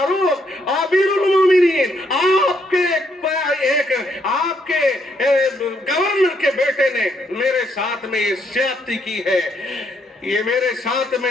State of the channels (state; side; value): normal; both; correlation 0.73